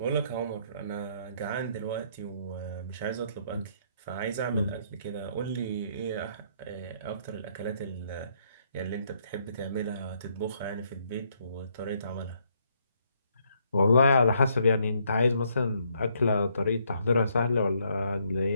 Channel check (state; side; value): inverted; both; correlation -0.71